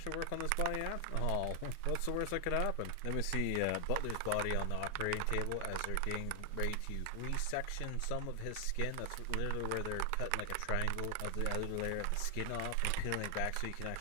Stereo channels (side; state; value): both; different; correlation 0.00